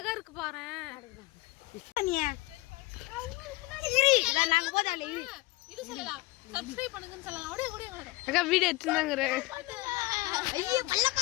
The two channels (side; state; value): right; quieter; 20.4 dB